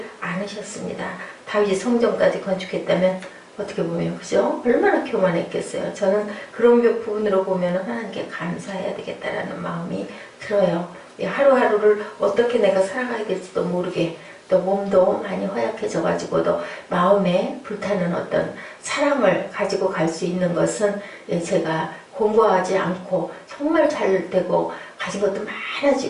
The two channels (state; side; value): identical; both; correlation 1.00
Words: 않으셨습니다. 다윗이 성전까지 건축했다면 어떻게 보면, 그죠? 얼마나 교만했겠어요. 저는 그런 부분으로 보면 하나님께 감사해야 되겠다라는 마음이 들어요. 하루하루를 어떻게 내가 살아가야 될지도 모르게, 또 몸도 많이 허약해져가지고도 마음에 불타는 어떤 사랑을 가지고 갈 수 있는 것은 제가 공부하지 않고 정말 잘 되고 가진 것도